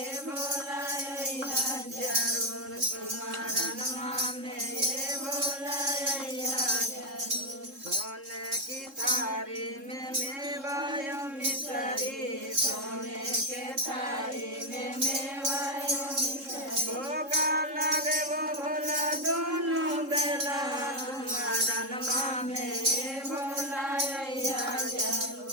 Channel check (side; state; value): left; late; 3.7 ms